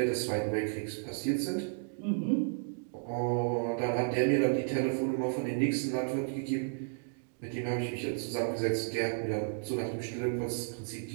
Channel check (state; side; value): silent; left; digital silence